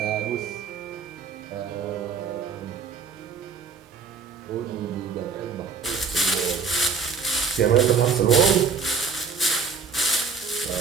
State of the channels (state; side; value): quieter; left; 5.3 dB